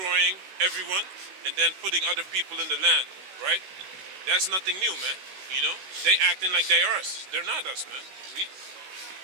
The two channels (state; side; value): late; left; 16 ms